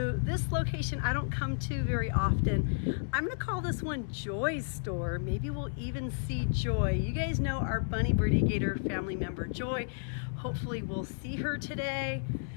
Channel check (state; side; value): silent; right; digital silence